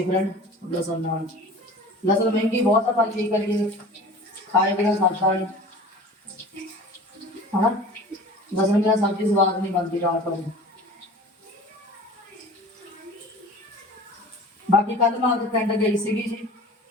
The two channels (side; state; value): both; normal; correlation 0.41